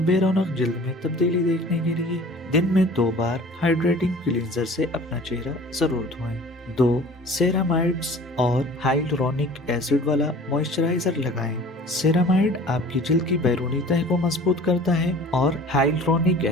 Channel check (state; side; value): normal; both; correlation 0.45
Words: رونق جلد میں تبدیلی دیکھنے کے لیے دن میں 2 بار ہائیڈریٹنگ کلینزر سے اپنا چہرہ ضرور دھوئیں۔ 2. سیرامائڈز اور ہائلورونک ایسڈ والا موئسچرائزر لگائیں۔ سیرامائڈ آپ کی جلد کی بیرونی تہہ کو مضبوط کرتا ہے اور ہائلورونک